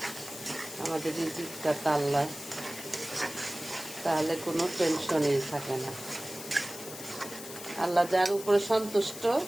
আমাদের রিজিকটা তো আল্লাহ, তাহলে কোনো টেনশনই থাকে না। আল্লাহ যার উপরে সন্তুষ্ট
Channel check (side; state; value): left; noise; hiss, 12 dB below the sound